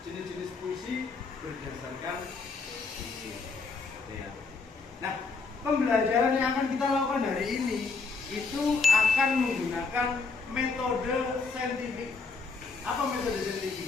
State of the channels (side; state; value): right; quieter; 4.4 dB